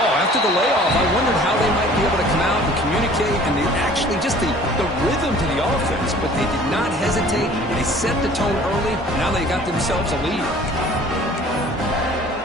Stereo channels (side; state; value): both; normal; correlation 0.50